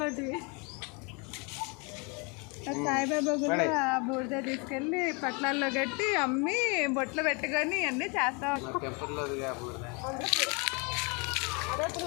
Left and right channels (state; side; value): quieter; right; 31.9 dB